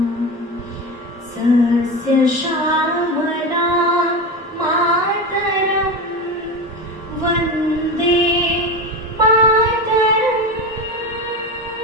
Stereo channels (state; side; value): normal; both; correlation 0.22